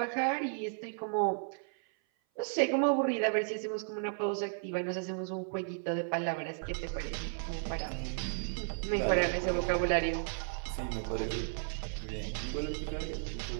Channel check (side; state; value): left; silent; 55 dB below the other